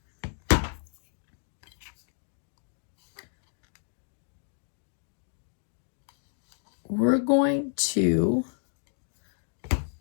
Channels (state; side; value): silent; right; 57 dB below the other